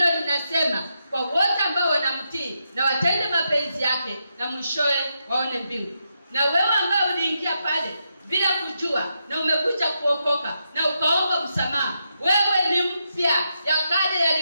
linasema kwa wote ambao wanamtii na watende mapenzi yake, na mwishowe waone mbingu. Na wewe ambao uliingia pale bila kujua na umekuja kuokoka na ukaomba msamaha, wewe ni mpya, ya kale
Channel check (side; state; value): both; inverted; correlation -0.83